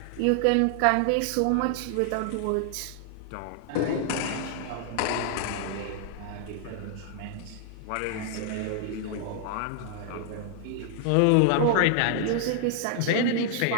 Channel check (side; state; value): both; different; correlation 0.00